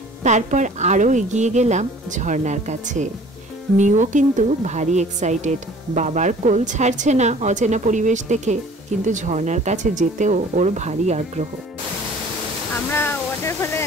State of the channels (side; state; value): both; normal; correlation 0.49